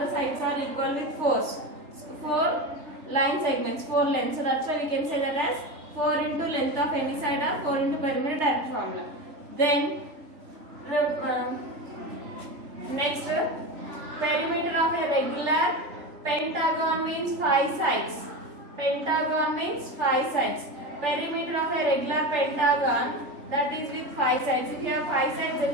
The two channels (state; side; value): late; left; 3.3 ms